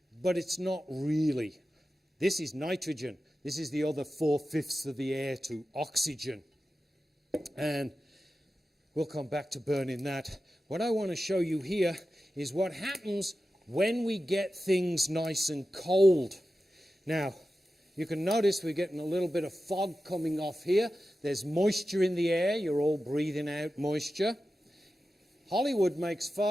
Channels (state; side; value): normal; both; correlation 0.93